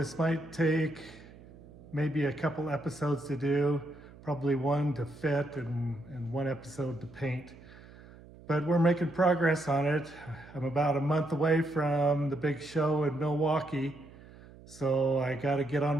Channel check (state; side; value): noise; right; hum, 21 dB below the sound